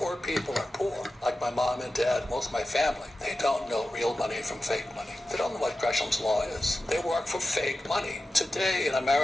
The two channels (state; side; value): normal; both; correlation 0.93